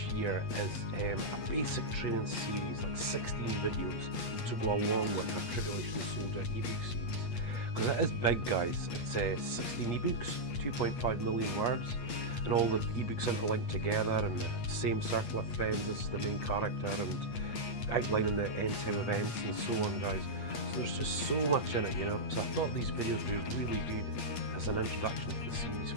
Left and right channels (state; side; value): late; right; 8.4 ms